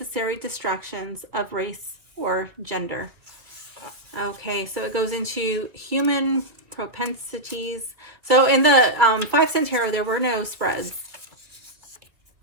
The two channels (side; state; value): left; late; 2.5 ms